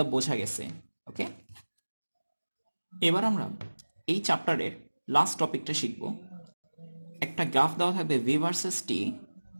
বোঝা গেছে, ওকে। এবার আমরা এই চ্যাপ্টারের লাস্ট টপিকটা শিখব। একটা গ্রাফ দেওয়া থাকবে ভি ভার্সেস টি,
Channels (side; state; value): both; inverted; correlation -1.00